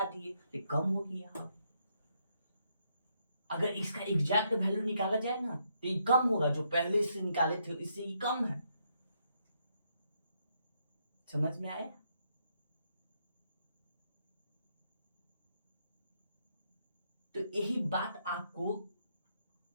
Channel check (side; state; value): both; inverted; correlation -0.76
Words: दिए, तो कम हो गया। अगर इसका एग्जैक्ट वैल्यू निकाला जाए ना तो ये कम होगा, जो पहले इससे निकाले थे इससे ये कम है। समझ में आया? तो यही बात आपको